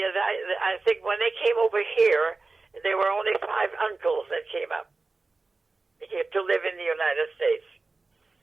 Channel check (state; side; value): quieter; left; 3.7 dB